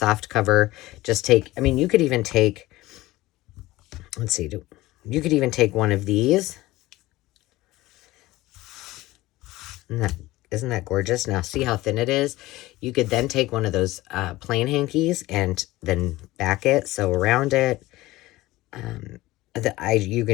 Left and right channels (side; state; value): right; quieter; 18.2 dB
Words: cover. Just take, you could even take, let's see, you could even take one of these. Isn't that gorgeous? Now, see how thin it is? You could then take one of those plain hankies and then back it, sew around it. You